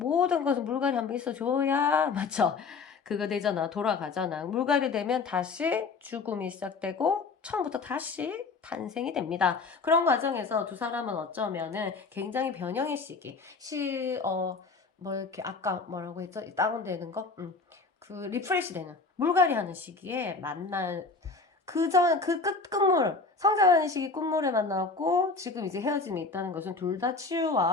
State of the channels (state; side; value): quieter; right; 4.3 dB